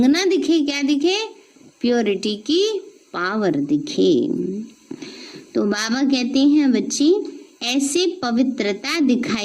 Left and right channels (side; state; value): both; identical; correlation 1.00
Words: ना दिखे, क्या दिखे? प्योरिटी की पावर दिखे। तो बाबा कहते हैं बच्ची ऐसे पवित्रता